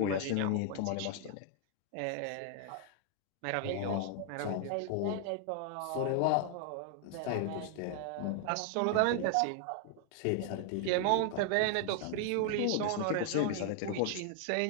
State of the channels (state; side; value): different; both; correlation 0.00